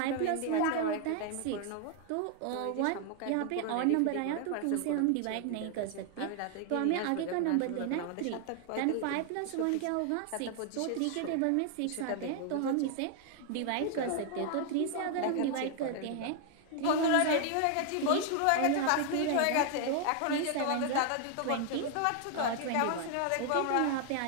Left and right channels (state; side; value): different; both; correlation 0.00